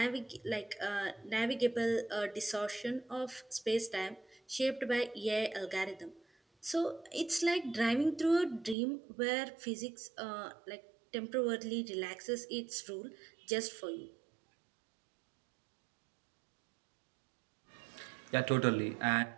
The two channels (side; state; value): left; drops out; at 8.8 s